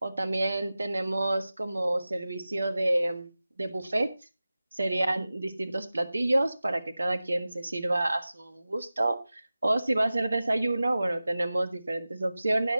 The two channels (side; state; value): both; inverted; correlation -0.96